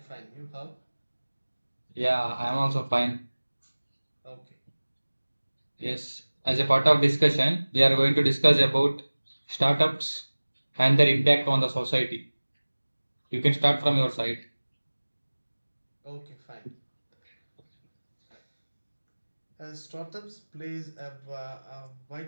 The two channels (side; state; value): both; inverted; correlation -1.00